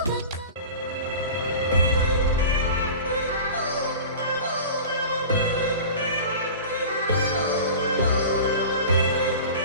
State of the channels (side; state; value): both; inverted; correlation -0.35